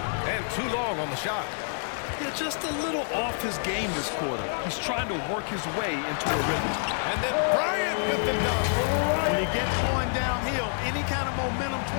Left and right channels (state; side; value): silent; right; 60 dB below the other